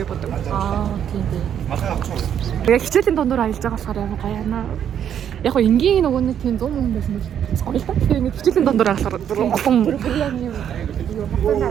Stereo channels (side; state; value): left; quieter; 9.2 dB